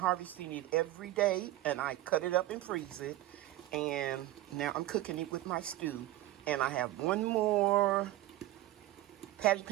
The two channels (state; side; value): quieter; left; 15.5 dB